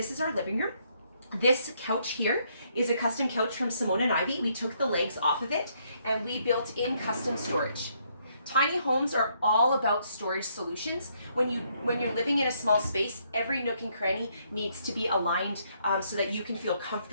is our living room. This couch here is a custom couch from Simone and Ivy. We took the legs off of it and we built in custom storage. Tiny homes are all about storage solutions. When you're living in a small space, every nook and cranny needs to be aligned so that you can feel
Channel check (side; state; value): both; inverted; correlation -0.71